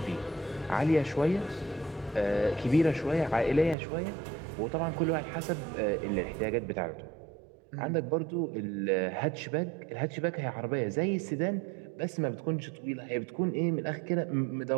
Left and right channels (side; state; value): left; drops out; at 3.8 s